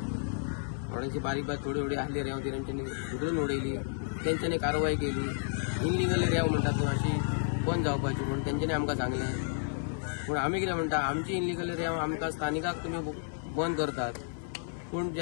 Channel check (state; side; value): silent; right; 57 dB below the other